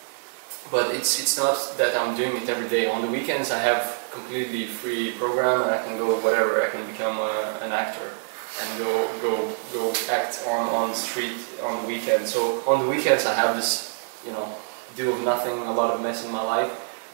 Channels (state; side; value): silent; left; digital silence